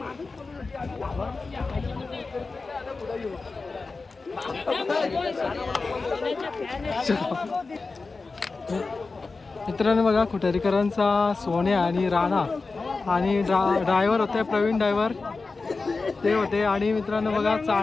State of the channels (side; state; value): right; quieter; 4.0 dB